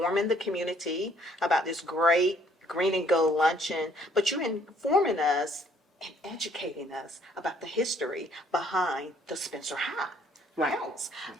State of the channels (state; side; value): normal; both; correlation 0.63